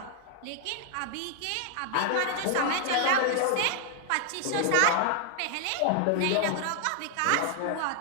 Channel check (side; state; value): both; different; correlation 0.00